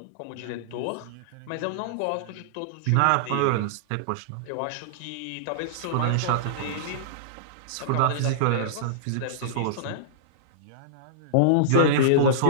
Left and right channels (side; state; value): both; different; correlation -0.02